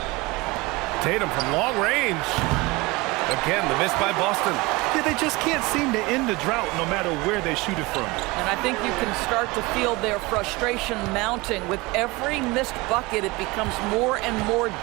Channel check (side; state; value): left; quieter; 23.4 dB